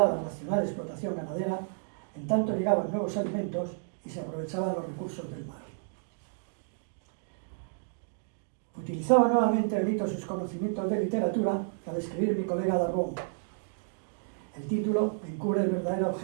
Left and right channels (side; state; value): left; silent; digital silence